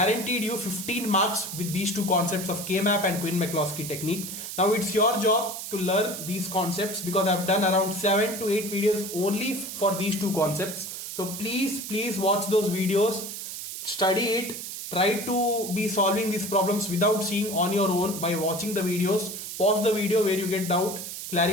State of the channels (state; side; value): noise; right; hiss, 8 dB below the sound